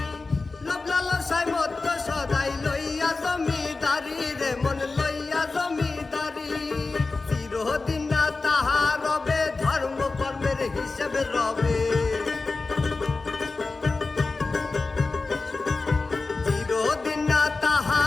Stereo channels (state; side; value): quieter; right; 3.8 dB